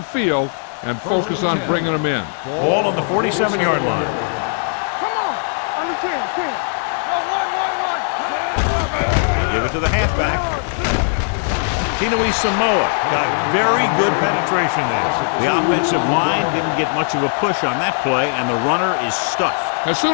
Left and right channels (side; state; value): right; silent; 57 dB below the other